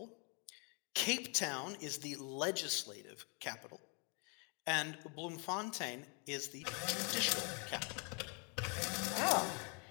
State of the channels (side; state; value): right; quieter; 36.3 dB